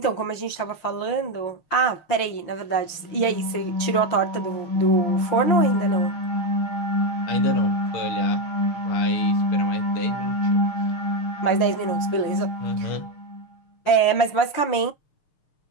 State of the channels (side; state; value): right; late; 6.5 ms